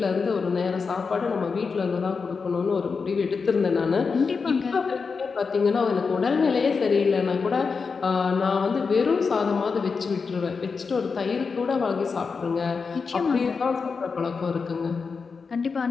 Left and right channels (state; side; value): quieter; right; 5.1 dB